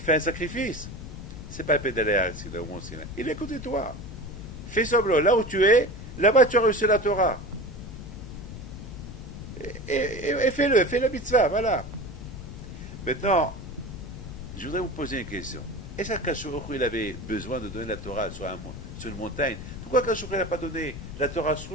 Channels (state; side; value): noise; left; rumble, 10 dB below the sound